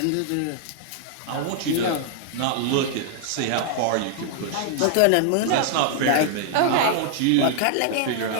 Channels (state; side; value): different; both; correlation -0.01